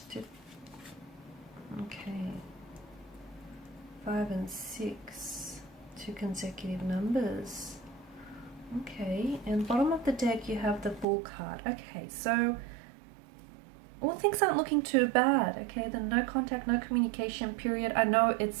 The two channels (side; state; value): left; drops out; at 11.1 s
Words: Okay. 5 and 6. 2 consecutive numbers. Okay. And bottom of the deck you have the Fool card. Okay, so all things aren't looking too bad. Okay, the no contact, no communication period. I know